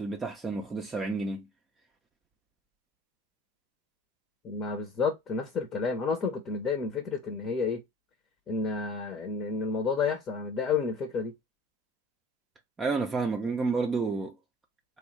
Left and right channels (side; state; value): both; normal; correlation 0.48